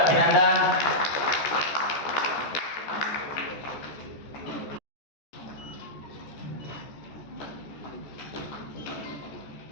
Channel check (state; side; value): late; right; 14 ms